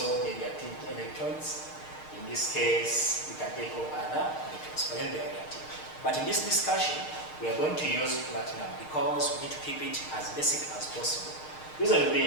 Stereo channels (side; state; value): right; late; 6.5 ms